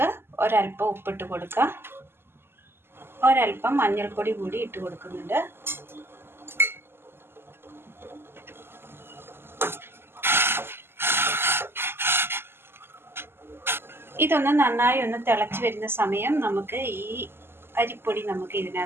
ഒരല്പം ഉപ്പിട്ട് കൊടുക്കാം. ഒരല്പം മഞ്ഞൾപ്പൊടി കൂടി ഇട്ട് കൊടുക്കുന്നുണ്ട്. ഇതൊന്ന് നന്നായി ഒന്ന് തിളച്ച് വരുന്ന സമയം നമുക്ക് ഈ അരിപ്പൊടി നമുക്ക്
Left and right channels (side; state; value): left; late; 0.11 ms